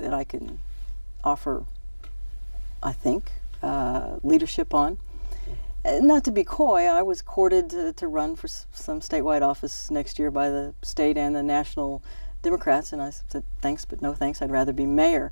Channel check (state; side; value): inverted; both; correlation -1.00